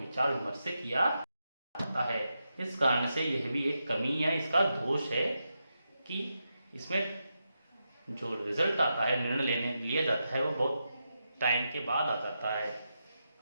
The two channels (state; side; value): inverted; both; correlation -0.87